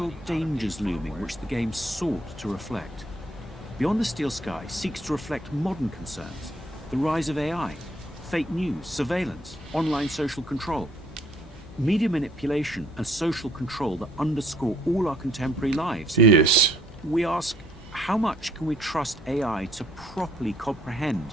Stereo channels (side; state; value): both; normal; correlation 0.63